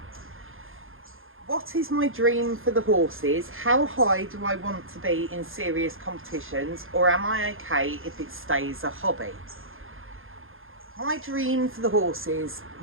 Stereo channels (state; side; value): late; left; 0.60 ms